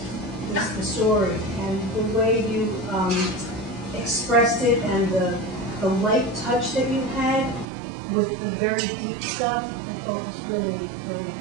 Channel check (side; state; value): left; drops out; at 7.7 s